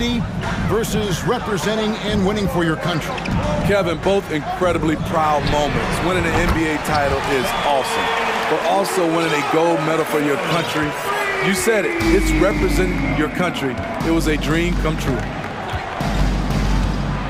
versus representing and winning for your country? Kevin, both incredibly proud moments. Winning an NBA title is awesome, but also winning a gold medal for your country. You said it, it's representing your country. It was a dream come true.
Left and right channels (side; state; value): both; identical; correlation 1.00